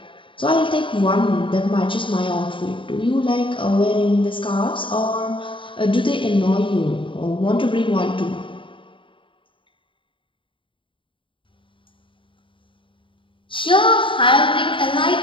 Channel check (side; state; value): right; late; 0.25 ms